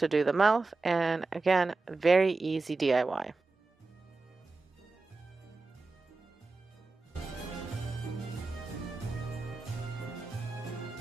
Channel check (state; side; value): quieter; left; 3.7 dB